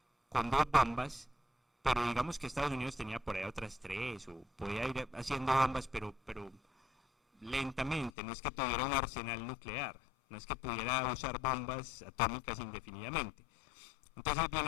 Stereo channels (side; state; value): right; drops out; at 8.1 s